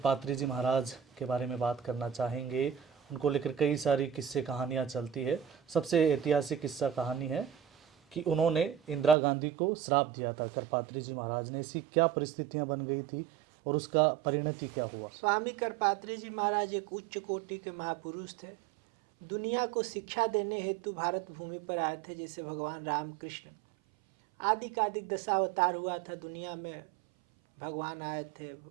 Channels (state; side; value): drops out; left; at 9.2 s